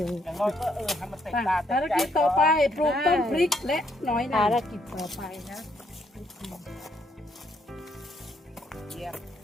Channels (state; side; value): normal; both; correlation 0.72